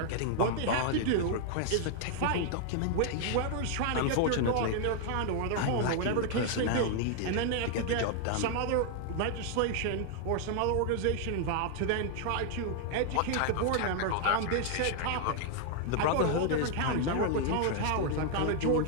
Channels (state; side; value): different; both; correlation 0.00